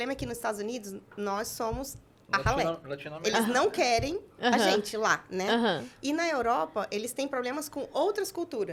é que nos Estados Unidos, nós somos a ralé. Latino-América. Eles não querem a Aham. gente lá, né? Aham. E na Europa, eles têm problemas com outras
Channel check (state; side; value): identical; both; correlation 1.00